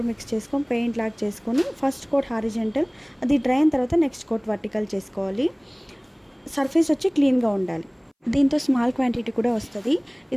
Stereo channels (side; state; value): both; identical; correlation 1.00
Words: మిక్స్ చేసుకొని పెయింట్ లాక్ చేసుకొని ఫస్ట్ కోట్ హారిజెంటల్, అది డ్రై అయిన తర్వాత నెక్స్ట్ కోట్ వర్టికల్ చేసుకోవాలి. సర్ఫేస్ వచ్చి క్లీన్గా ఉండాలి. దీంతో స్మాల్ క్వాంటిటీ కూడా వస్తుంది.